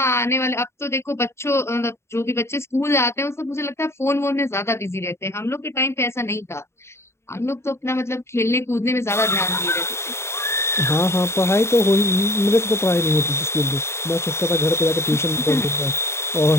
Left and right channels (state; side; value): late; right; 0.13 ms